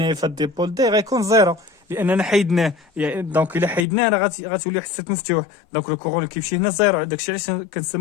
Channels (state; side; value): drops out; right; at 3.9 s